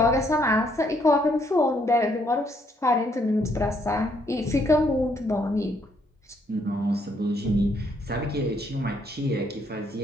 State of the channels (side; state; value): both; normal; correlation 0.70